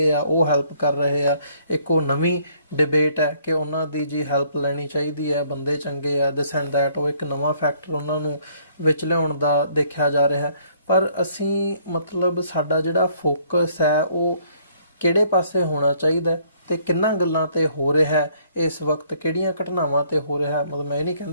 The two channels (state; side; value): inverted; both; correlation -0.64